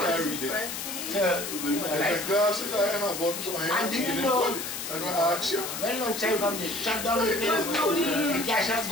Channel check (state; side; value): noise; left; hiss, 6 dB below the sound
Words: it. The glasses I have on, so I ain't reading it. And I ask you. When long time come this, shut down the place. The cash has